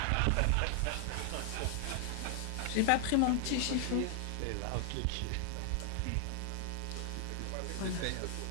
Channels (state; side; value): different; both; correlation 0.00